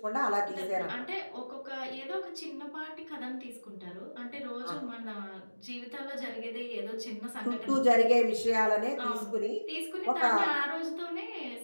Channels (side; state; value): both; inverted; correlation -1.00